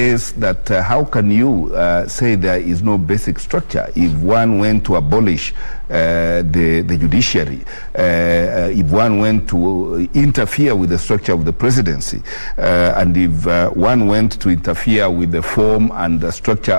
that how can you say there is no basic structure if one went to abolish the judiciary, if one went to interfere with the structure of the presidency, and if one went to interfere with the form and the structure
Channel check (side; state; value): both; inverted; correlation -1.00